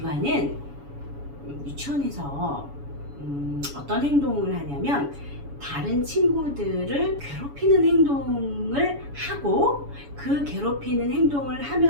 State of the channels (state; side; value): late; left; 7.1 ms